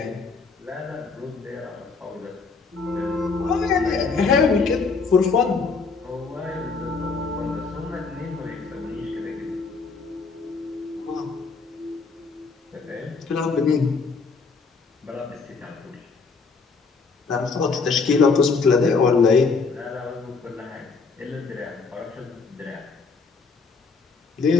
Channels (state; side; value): quieter; right; 4.6 dB